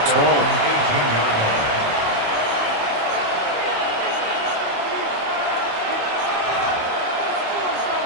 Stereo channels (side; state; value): left; late; 27 ms